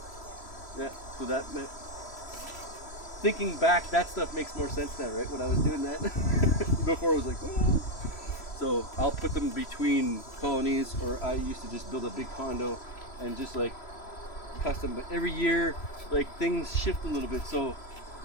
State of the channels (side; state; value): right; late; 3.0 ms